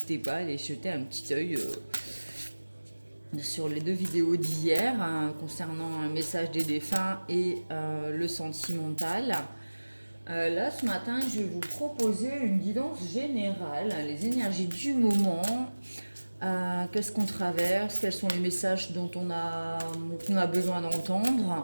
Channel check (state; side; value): inverted; both; correlation -1.00